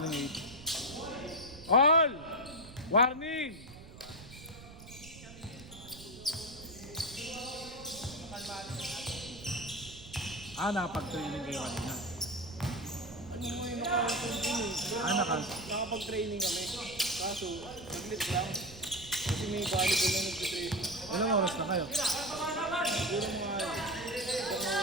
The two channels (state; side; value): noise; right; rumble, 17 dB below the sound